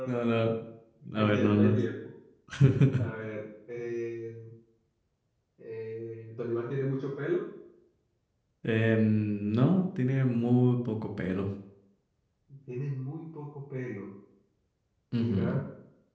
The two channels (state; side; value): identical; both; correlation 1.00